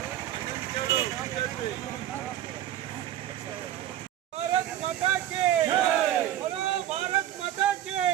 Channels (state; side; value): quieter; left; 12.3 dB